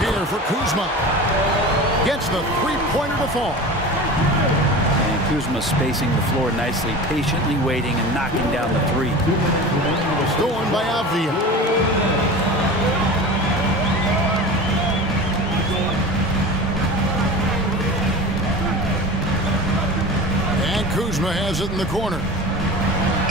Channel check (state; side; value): normal; both; correlation 0.33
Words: for Kuzma. Gets the three-pointer to fall. And Kuzma spacing the floor nicely, patiently waiting and knocking down the three. Stolen by Avdia. And Kuzma has it in the corner.